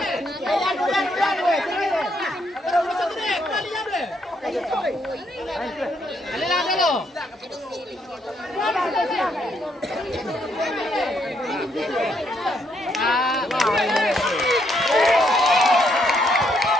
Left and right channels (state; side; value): normal; both; correlation 0.74